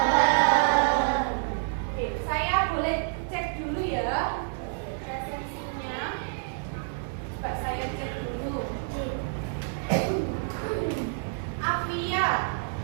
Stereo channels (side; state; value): left; silent; 59 dB below the other